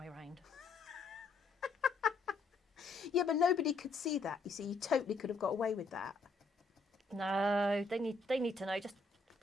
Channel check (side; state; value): right; quieter; 3.7 dB